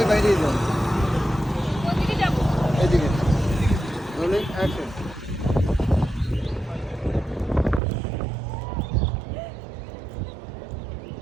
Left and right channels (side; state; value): left; drops out; at 7.8 s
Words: বাইরে যান, এদিকে রোলিং অ্যাকশন।